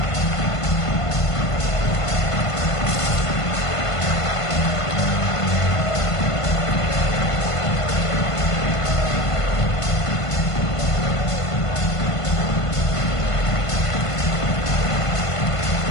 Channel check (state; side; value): late; right; 1.5 ms